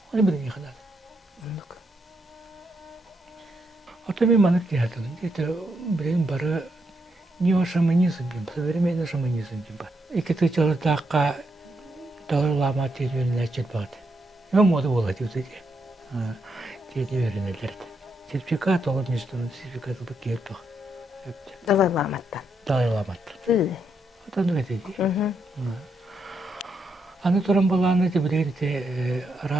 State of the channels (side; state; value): both; normal; correlation 0.80